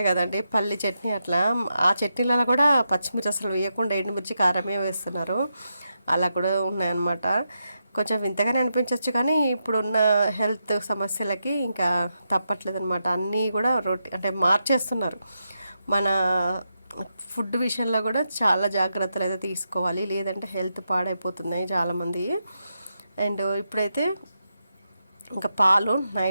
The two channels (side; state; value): both; inverted; correlation -0.85